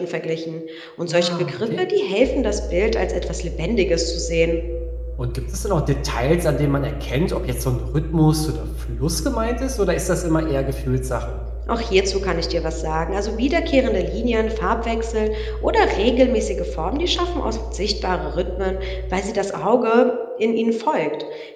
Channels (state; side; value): identical; both; correlation 1.00